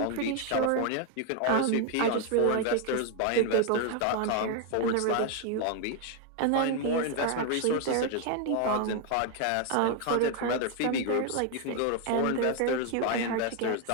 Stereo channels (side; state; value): both; different; correlation 0.01